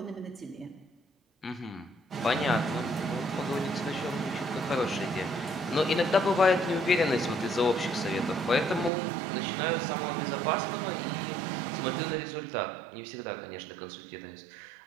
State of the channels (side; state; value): left; drops out; at 8.9 s